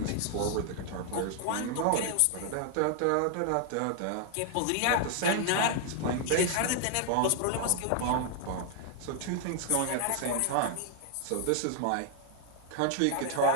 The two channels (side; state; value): both; different; correlation 0.00